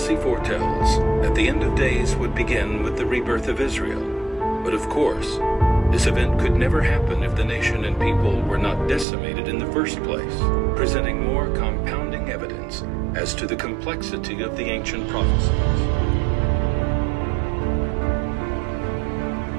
foretells that the end of days would begin with the rebirth of Israel. But of course, this event could never happen if the nation and people were not decimated in the first place, presenting more compounding evidence as to the complexity of the ancient prophecies.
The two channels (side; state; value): left; drops out; at 9.1 s